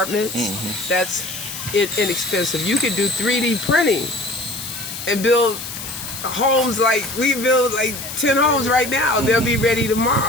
that's inexpensive. You could do 3D printing and build homes like we build like 10 homes right now. They'll be ready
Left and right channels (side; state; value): left; noise; hiss, 9 dB below the sound